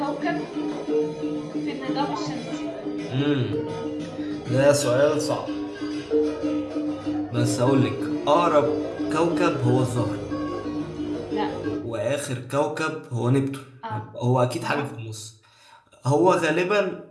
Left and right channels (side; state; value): both; identical; correlation 1.00